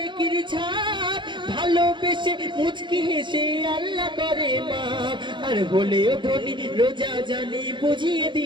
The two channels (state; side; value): late; left; 0.23 ms